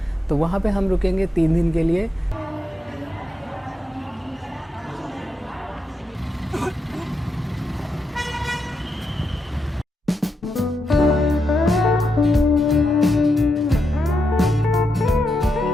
तो वहाँ पे हम रुकेंगे 3 दिन के लिए।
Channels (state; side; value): normal; both; correlation 0.84